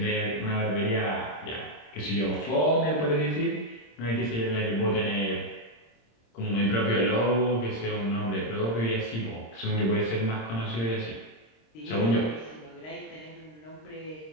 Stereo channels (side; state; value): right; late; 26 ms